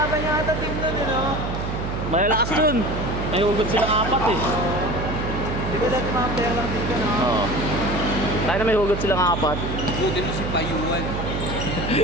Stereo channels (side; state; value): right; noise; hum, 4 dB below the sound